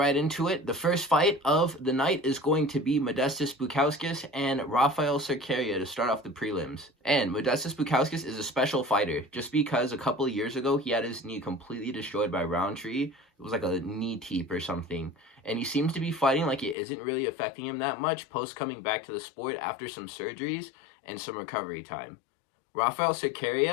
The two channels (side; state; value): right; drops out; at 16.8 s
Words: into it. The first fight of the night is going to be Modestas Buskauskas and Rafael Cerqueria to start off the prelims. And Modestas Buskauskas is a special fighter just because a couple of years ago he had his knee completely destroyed by Roundtree. It was like a knee teep or something. And he seems to be fighting like it isn't really affecting him that much post coming back to the sport after some surgeries and some recovery time. Rafael